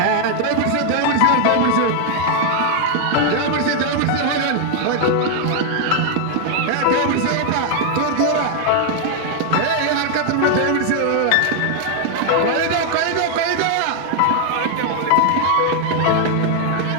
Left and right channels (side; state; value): both; different; correlation 0.00